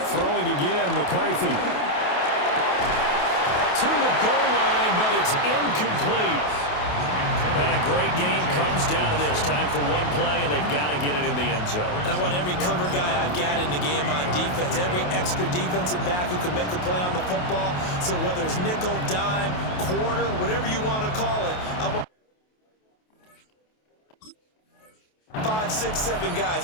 Throwing again, McCarthy. To the goal line, but it's incomplete. And a great game comes down to this. Time for one play, and they've got to get it in the end zone. And I want every cover guy I've got in the game on defense, every extra defensive back who can make a play on the football. So whether it's nickel, dime, quarter, whatever you want to call it, I want 5, 6, 7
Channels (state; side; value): late; right; 28 ms